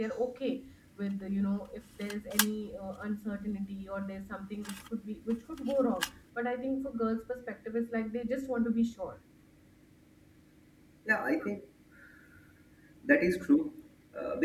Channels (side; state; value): both; identical; correlation 1.00